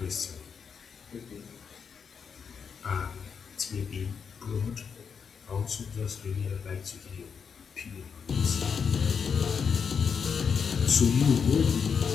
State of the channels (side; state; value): right; quieter; 6.4 dB